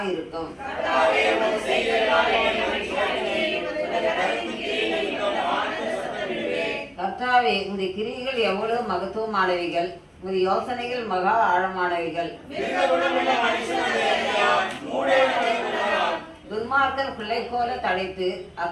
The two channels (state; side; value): identical; both; correlation 1.00